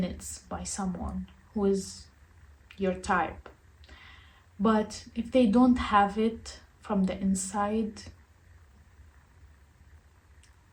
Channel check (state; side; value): identical; both; correlation 1.00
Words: by someone who is your type. But if they don't have it from the inside,